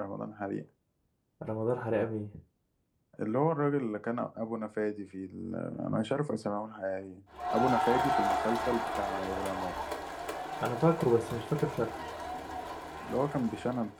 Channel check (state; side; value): identical; both; correlation 1.00